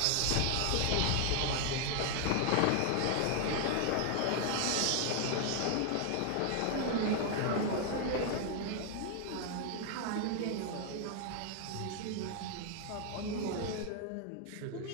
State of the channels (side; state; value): both; different; correlation 0.00